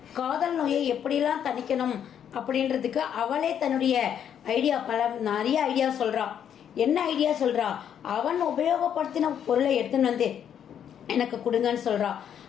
காதல் நோயை எப்படிலாம் தணிக்கணும் அப்படின்றதுக்கு அவளே தன்னுடைய நிறைய ஐடியா சொல்கிறா. என்ன ஐடியா சொல்கிறா? அவன் உபயோகப்படுத்தின பொருளை எடுத்துன்னு வந்து எனக்கு கொடுங்கன்னு சொல்கிறா.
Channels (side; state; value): right; quieter; 9.0 dB